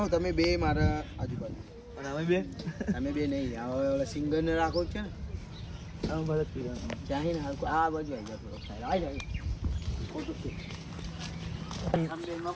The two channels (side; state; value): both; identical; correlation 1.00